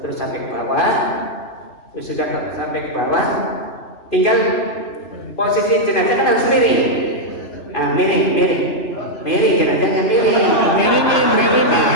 sampai ke bawah. Terus sudah sampai ke bawah, tinggal posisi jenazah kan harus miring. Miring jenazahnya miring.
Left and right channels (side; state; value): right; late; 2.5 ms